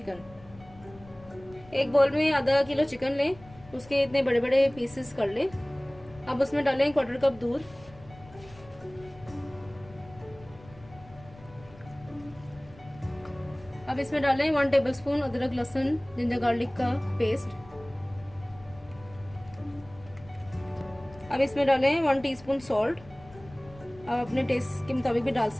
एक बोल में आधा किलो चिकन लें, उसके इतने बड़े बड़े पीसेस कर लें। अब उसमें डालें 1/4 कप दूध, अब इसमें डालें 1 टेबलस्पून अदरक लहसुन जिंजर गार्लिक का पेस्ट। अब इसमें डालें 1 टीस्पून सॉल्ट, आप अपने टेस्ट के मुताबिक भी डाल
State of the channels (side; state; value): left; noise; rumble, 21 dB below the sound